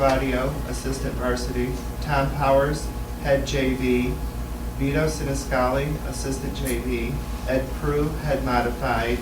assistant varsity, Tom Powers, head JV, Vito Siniscali, assistant JV, Ed Prue, head modified,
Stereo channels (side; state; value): both; identical; correlation 1.00